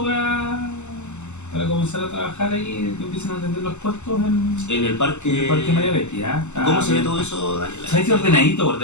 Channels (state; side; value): late; right; 0.83 ms